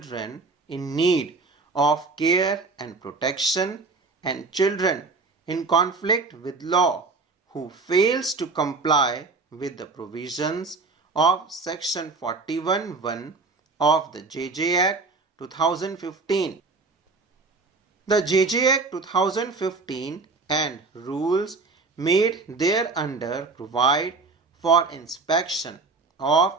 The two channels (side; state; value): left; quieter; 4.0 dB